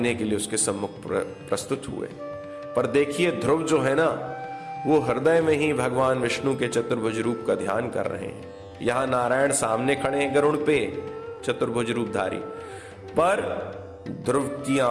के लिए उसके सम्मुख प्रस्तुत हुए। पर देखिए, ध्रुव जो है ना, वो हृदय में ही भगवान विष्णु के चतुर्भुज रूप का ध्यान कर रहे हैं। यहां नारायण सामने खड़े हैं गरुड़ पे, चतुर्भुज रूपधारी, पर ध्रुव की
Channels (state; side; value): identical; both; correlation 1.00